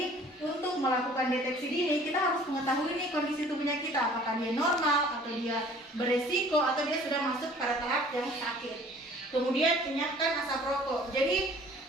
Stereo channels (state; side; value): normal; both; correlation 0.51